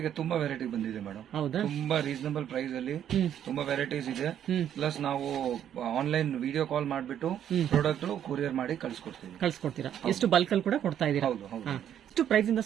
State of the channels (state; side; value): quieter; left; 10.0 dB